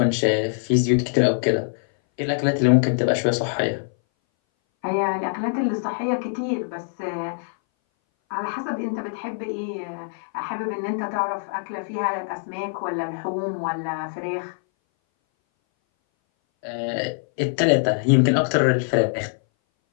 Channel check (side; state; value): right; silent; 60 dB below the other